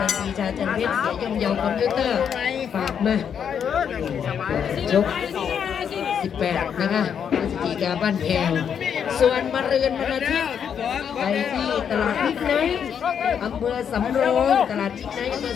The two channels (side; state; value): right; quieter; 7.8 dB